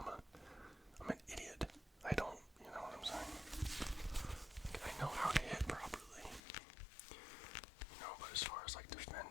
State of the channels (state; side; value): drops out; right; at 6.4 s